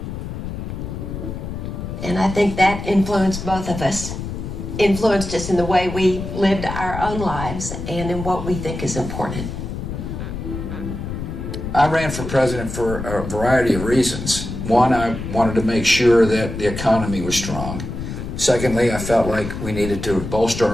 And I think that influenced both of us. Influenced us in the way we lived our own lives and in what we think is important. I ran for president for a variety of reasons. One, I wanted to make sure that the economy was strong. Secondly, I felt like we needed to bolster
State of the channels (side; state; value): left; noise; rumble, 7 dB below the sound